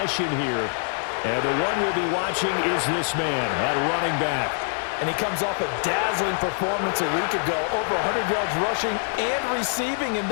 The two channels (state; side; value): silent; right; 62 dB below the other